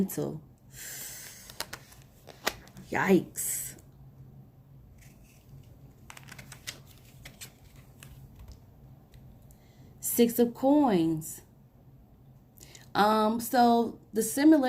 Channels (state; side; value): identical; both; correlation 1.00